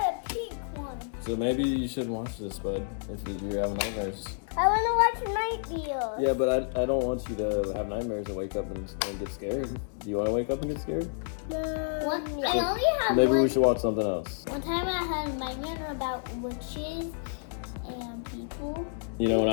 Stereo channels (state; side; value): silent; right; digital silence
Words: a pink one. So maybe you shouldn't watch this, bud, if you're having nightmares. I want to watch Night View. Yeah, but I don't want you to have nightmares and wake up and get scared. Do you want to wake up and get scared? No. I only have Maybe we should watch something else. One time I had a nightmare about witches and people. You know, when